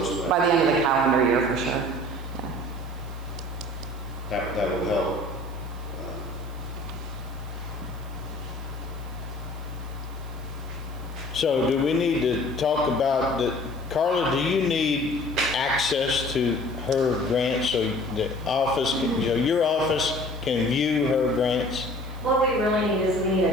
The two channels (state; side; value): noise; right; hiss, 25 dB below the sound